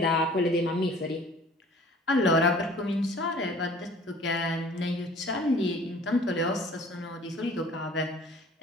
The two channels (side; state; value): both; normal; correlation 0.50